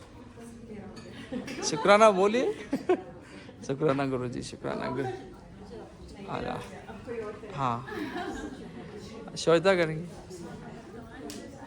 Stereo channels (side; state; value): both; identical; correlation 1.00